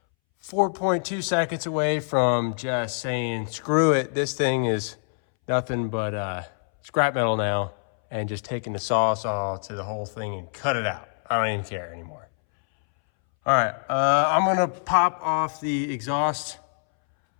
4.2 seconds away from just saying, screw it, this thing is nothing but scrap metal now, and just taking the saw to the whole thing and cut it out. I don't even care anymore. All right, I'm gonna pop off the exhaust,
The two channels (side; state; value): right; silent; 62 dB below the other